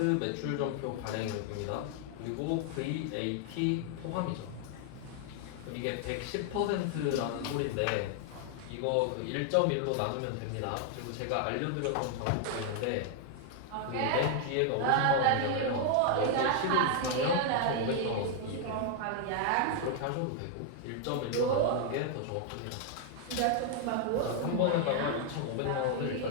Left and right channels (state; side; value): different; both; correlation 0.00